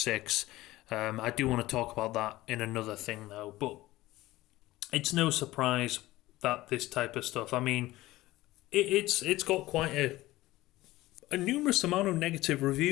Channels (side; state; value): right; quieter; 17.6 dB